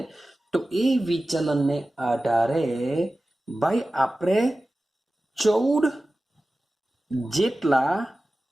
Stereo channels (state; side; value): normal; both; correlation 0.96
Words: તો એ વિચલનને આધારે ભાઈ આપણે 14 જેટલા